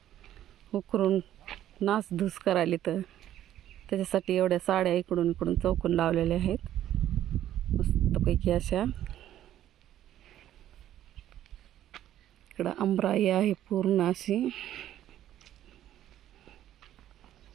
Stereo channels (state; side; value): quieter; left; 12.1 dB